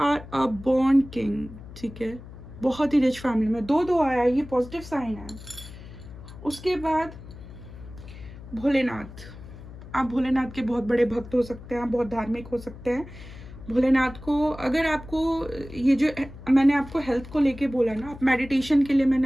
a born king, ठीक है, बहुत ही रिच फैमिली में, 2 आया, ये पॉजिटिव साइन है। उसके बाद भोलेनाथ, आप भोलेनाथ के बहुत बड़े भक्त हो सकते हैं, आप बहुत धार्मिक हो सकते हैं। भोलेनाथ को, अगर आपको ये जो मैंने आपको हेल्थ को लेके बोला ना, आप मेडिटेशन के लिए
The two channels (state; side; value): noise; left; hum, 15 dB below the sound